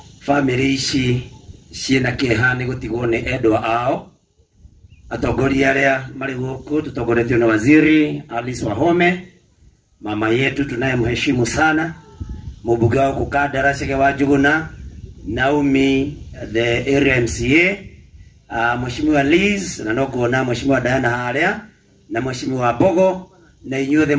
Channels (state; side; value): identical; both; correlation 1.00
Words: Family ici ciena kehani gutigwo ni endwa ao. Atongoria aria mari guku tutongoretio na Waziri Alice Wahome, mama yetu tunayemheshimu sana, mbunge wa Kukadara Shega wa Juguna, Naomi the area MCA, Mheshimiwa Liz na nogona Mheshimiwa Diana haria na Mheshimiwa Bogo na inyuothe